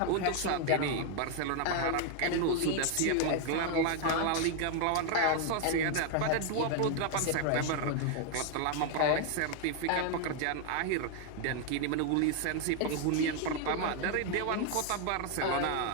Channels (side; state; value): both; different; correlation 0.00